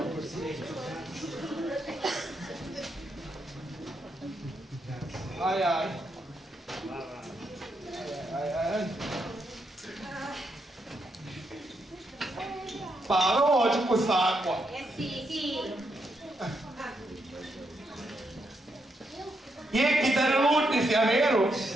Ai ai. Ai ai. Parlo oggi con quest'acqua. Sì. E chi te ne lutti sia vero?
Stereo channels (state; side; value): normal; both; correlation 0.80